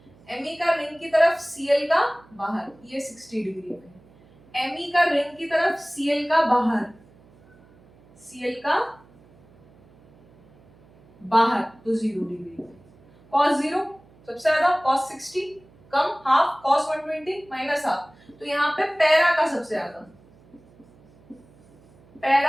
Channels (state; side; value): noise; right; hum, 28 dB below the sound